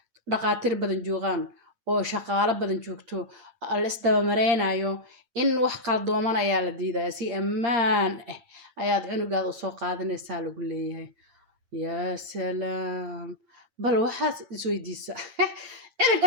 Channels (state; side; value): late; left; 8.7 ms